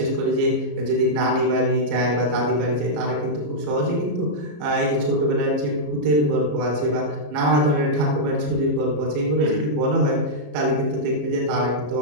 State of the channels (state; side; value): late; left; 34 ms